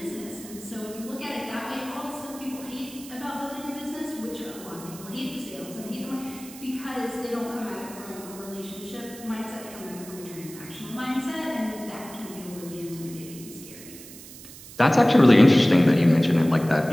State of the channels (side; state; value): right; noise; hiss, 16 dB below the sound